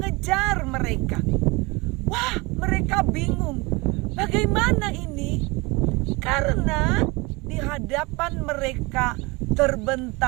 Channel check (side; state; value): left; quieter; 25.4 dB